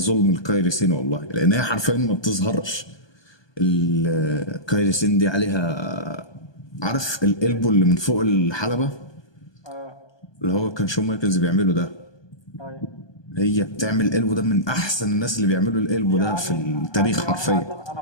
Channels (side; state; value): right; late; 1.2 ms